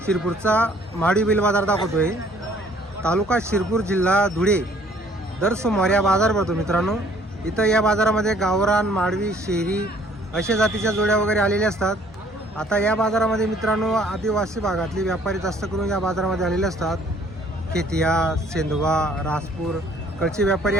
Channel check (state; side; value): normal; both; correlation 0.59